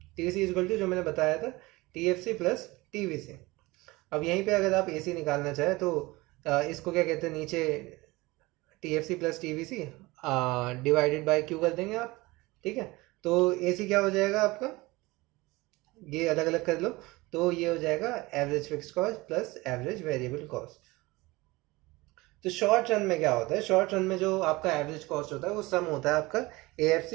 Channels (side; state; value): left; quieter; 21.7 dB